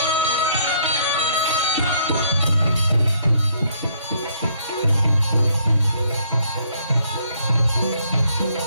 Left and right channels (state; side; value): inverted; both; correlation -0.67